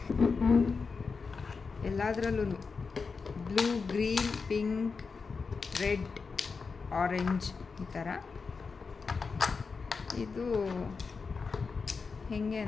ಎಲ್ಲದರಲ್ಲೂ blue, green, pink, red, orange ಈ ಥರ. ಇದು ಹೆಂಗೆ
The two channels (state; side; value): quieter; right; 4.9 dB